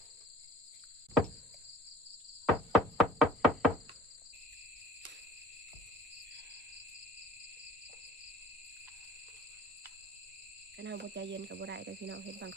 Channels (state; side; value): normal; both; correlation 0.45